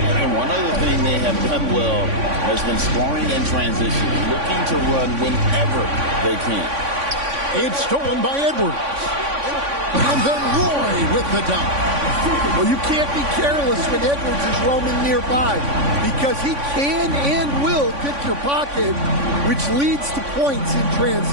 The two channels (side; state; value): left; late; 3.5 ms